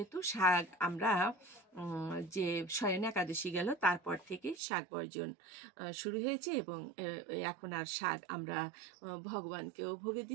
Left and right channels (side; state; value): left; drops out; at 4.6 s